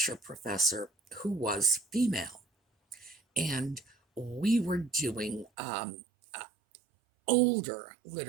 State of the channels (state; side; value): drops out; left; at 5.5 s